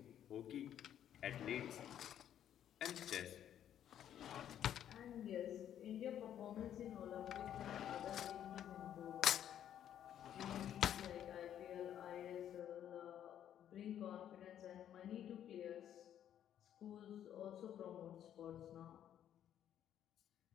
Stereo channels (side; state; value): right; quieter; 10.4 dB